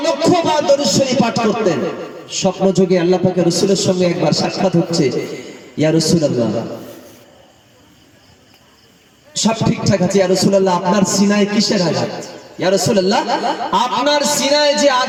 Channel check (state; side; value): identical; both; correlation 1.00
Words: বার দরুদ শরীফ পাঠ করতেন। স্বপ্ন যোগে আল্লাহ পাকের রাসূলের সঙ্গে একবার সাক্ষাৎ হচ্ছে। ইয়া রাসূলুল্লাহ, সব ঠিকঠাক আছে। ইয়া রাসূলুল্লাহ, আপনার সিনায় কিসের আঘাত? ইয়া রাসূলুল্লাহ, আপনার সিনায় যে